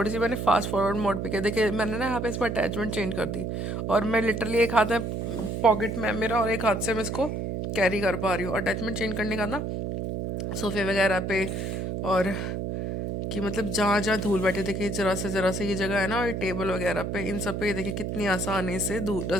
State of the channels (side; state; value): right; noise; hum, 3 dB below the sound